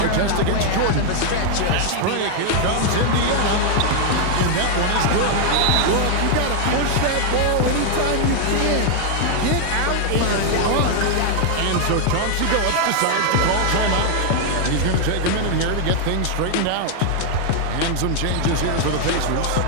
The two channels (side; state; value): both; different; correlation 0.00